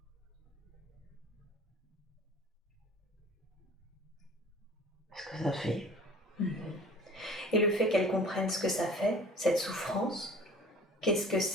Ce que ça fait. Et le fait qu'elle comprenne ce que ça fait, cette souffrance,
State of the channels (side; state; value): both; normal; correlation 0.45